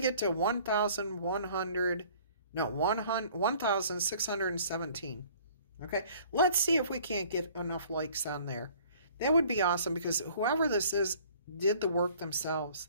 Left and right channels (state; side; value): inverted; both; correlation -0.53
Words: to 1,100? No, 1,617. Okay, let's see if we can't get enough likes on there. That would be awesome because whoever this is did the work themselves.